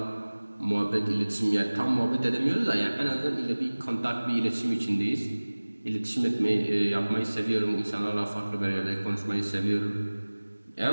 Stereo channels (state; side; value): inverted; both; correlation -1.00